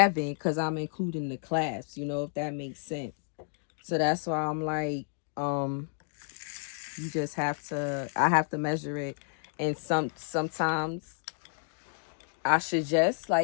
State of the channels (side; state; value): right; silent; 57 dB below the other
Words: because I'm including the clasps, if that makes sense. So that's why I'm like, you just have to, I have to measure it. And sometimes I suggest,